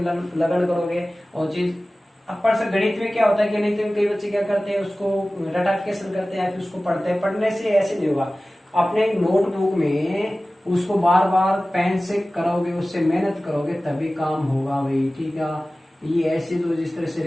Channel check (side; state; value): both; normal; correlation 0.97